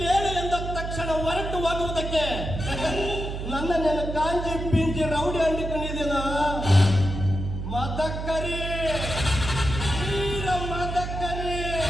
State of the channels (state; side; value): noise; right; hum, 5 dB below the sound